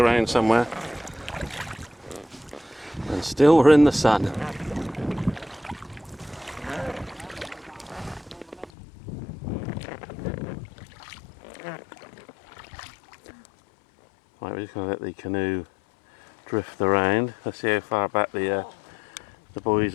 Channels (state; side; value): drops out; right; at 8.7 s